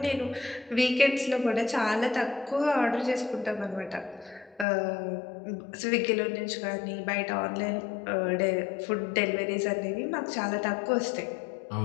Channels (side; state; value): right; drops out; at 4.7 s